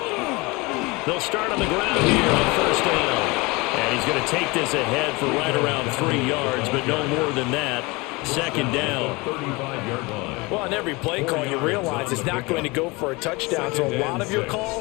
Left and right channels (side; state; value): right; quieter; 25.0 dB